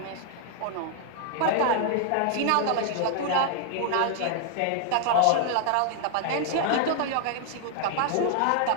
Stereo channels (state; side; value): different; both; correlation 0.00